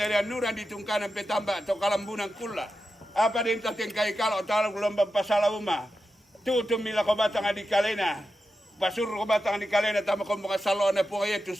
nuran ditungkanan petamba to kalambunan kula. Apa din tating kay kalau talo gelombang pasala uma. Tutu mila ko bata nga di kalena. Pasur ko bata nga di kalena tama ko mga salona po kaya tu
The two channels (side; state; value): both; normal; correlation 0.90